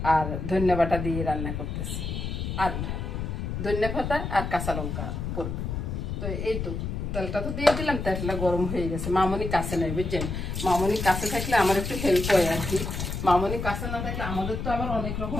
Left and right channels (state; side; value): noise; left; rumble, 4 dB below the sound